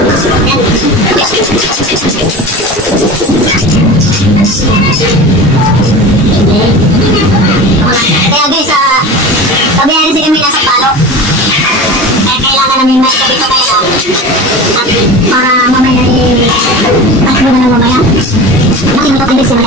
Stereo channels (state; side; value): normal; both; correlation 0.32